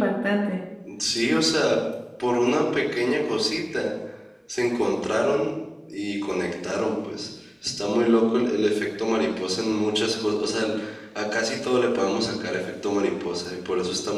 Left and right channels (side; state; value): both; identical; correlation 1.00